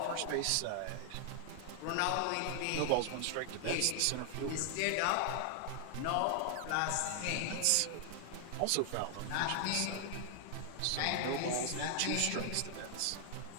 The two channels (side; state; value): both; different; correlation 0.00